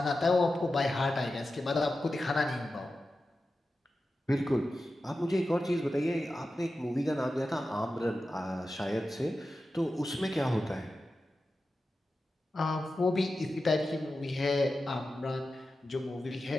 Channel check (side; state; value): both; normal; correlation 0.92